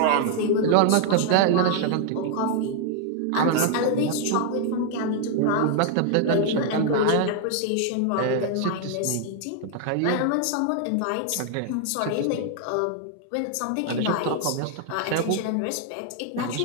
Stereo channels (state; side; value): different; both; correlation 0.00